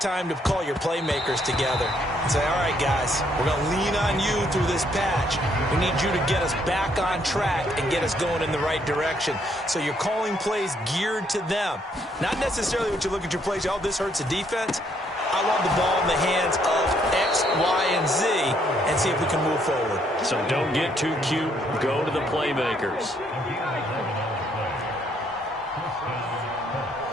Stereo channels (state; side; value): normal; both; correlation 0.70